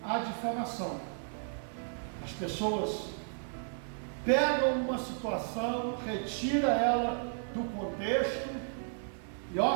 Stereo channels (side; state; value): left; silent; 55 dB below the other